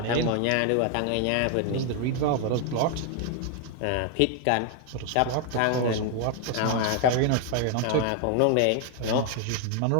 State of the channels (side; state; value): both; different; correlation 0.00